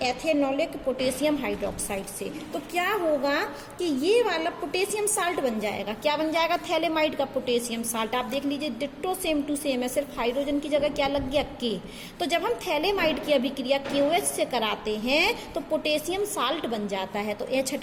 एथेनॉलिक पोटेशियम हाइड्रोक्साइड से। तो क्या होगा कि ये वाला पोटेशियम साल्ट बन जाएगा। क्या बन जाएगा? थैलेमाइड का पोटेशियम साल्ट। आप देख लीजिए, डिट्टो सेम टू सेम है, सिर्फ हाइड्रोजन की जगह क्या लग गया? K। तो जब हम थैलेमाइड की अभिक्रिया KOH से कराते हैं तो पोटेशियम साल्ट बन जाता है। तो H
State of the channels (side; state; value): both; identical; correlation 1.00